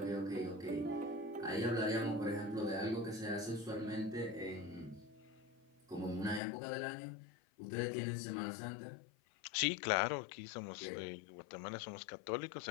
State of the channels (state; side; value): drops out; right; at 6.4 s